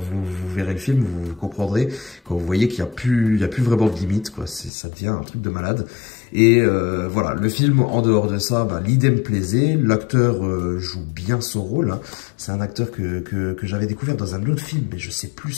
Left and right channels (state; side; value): drops out; right; at 4.7 s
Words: verrez le film, vous comprendrez, quand vous voyez qu'il y a plus vraiment de limite, quoi. Ça devient un truc de malade. Et voilà, le film, en dehors de ça, bah, l'idée me plaisait, l'acteur joue bien son rôle, hein. C'est un acteur que j'avais découvert dans un autre film, mais je sais plus